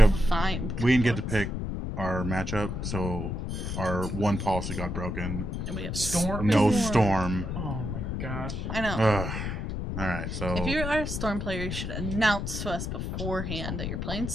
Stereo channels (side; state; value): left; noise; rumble, 3 dB below the sound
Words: find. We didn't get to pick our matchup, so our one policy got broken. And we have Storm? No storm. Oh my gosh. I know. Ugh. All right, so If you are a storm player, you should announce to us beforehand that you're playing